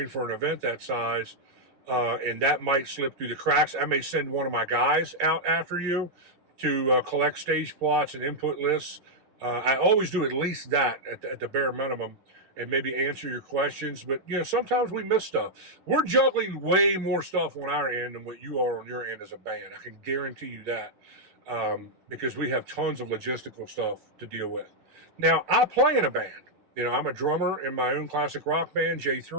for an event that size. And that might slip through the cracks. I may send one of my guys out after you to collect stage plots and input lists. I always do at least that at the bare minimum. and maybe answer your questions. But, sometimes we miss stuff. We're juggling way more stuff on our end than what you are on your end as a band. I can guarantee you that, because we have tons of logistical stuff to deal with. Now, I play in a band. I'm a drummer in my own classic rock band,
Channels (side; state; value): left; late; 11 ms